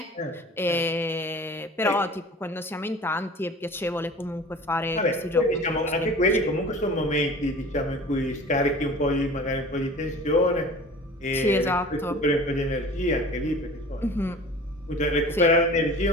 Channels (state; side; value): normal; both; correlation 0.42